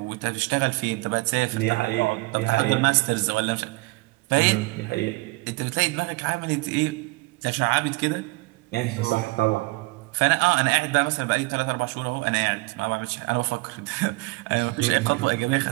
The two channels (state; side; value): quieter; left; 23.9 dB